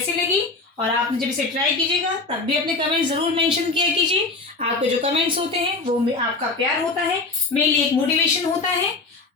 लगी और आपने जब इसे ट्राई कीजिएगा तब भी अपने कमेंट ज़रूर मेंशन किया कीजिए। आपके जो कमेंट्स होते हैं वो आपका प्यार होता है, मेरे लिए एक मोटिवेशन होता है।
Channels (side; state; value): right; quieter; 3.6 dB